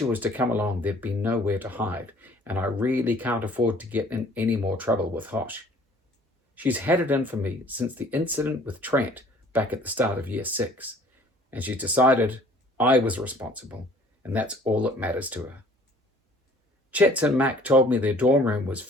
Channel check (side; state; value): both; normal; correlation 0.54